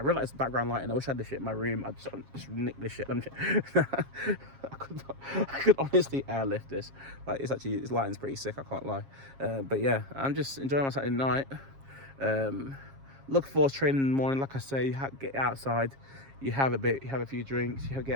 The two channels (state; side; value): late; left; 7.4 ms